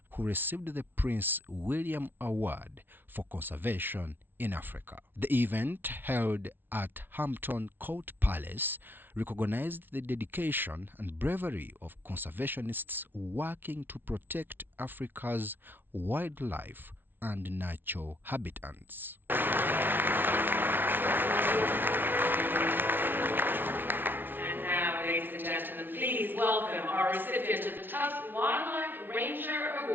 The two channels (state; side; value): late; left; 0.097 ms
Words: who received the Prince William Award for Conservation in Africa. The event, held at Hampton Court Palace, recognized the dedication and bravery of conservationists working to protect Africa's wildlife and natural habitats. And now, ladies and gentlemen, please welcome our recipient of the Tusk Wildlife Ranger